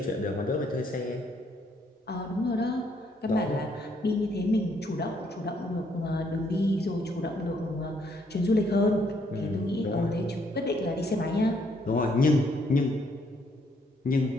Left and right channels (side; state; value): both; normal; correlation 0.70